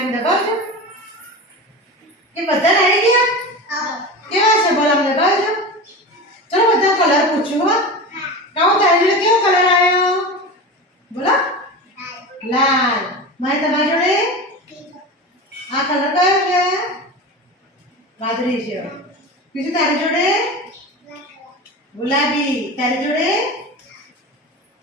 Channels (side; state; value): both; normal; correlation 0.28